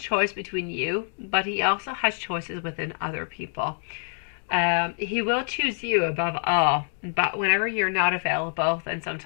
between you, but he also has choices within other people. He will choose you above all, but whenever you're not available, then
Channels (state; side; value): silent; right; 61 dB below the other